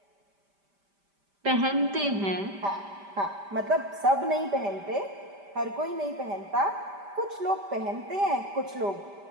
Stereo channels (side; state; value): left; late; 5.1 ms